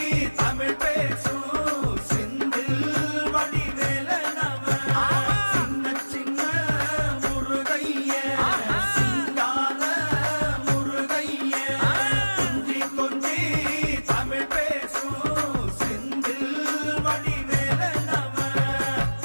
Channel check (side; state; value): both; inverted; correlation -1.00